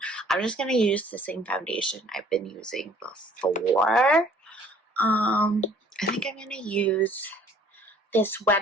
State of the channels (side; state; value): both; normal; correlation 0.55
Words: I'm just going to use the same foundation I've been using before. I think I'm going to use this